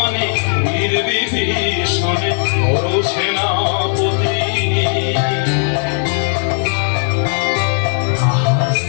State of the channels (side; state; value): right; silent; 60 dB below the other